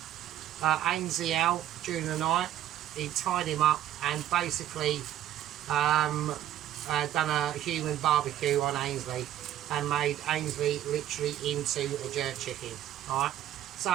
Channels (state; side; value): quieter; left; 12.1 dB